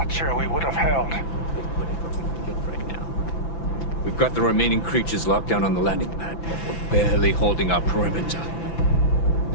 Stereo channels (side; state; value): right; late; 5.9 ms